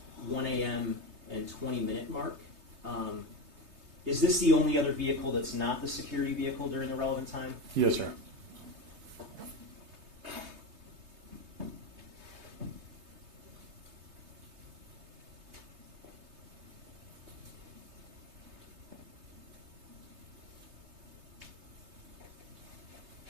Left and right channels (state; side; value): late; left; 3.2 ms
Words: 1 a.m. and 20-minute mark. Is this the only other vehicle that's not the security vehicle during the relevant time? Yes, sir.